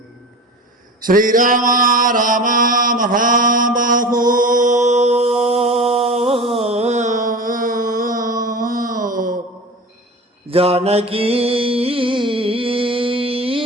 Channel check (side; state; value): both; normal; correlation 0.33